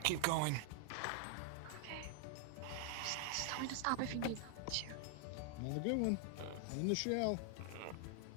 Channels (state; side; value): different; both; correlation 0.00